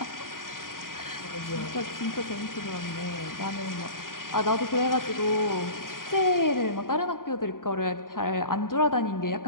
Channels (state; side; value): late; right; 0.90 ms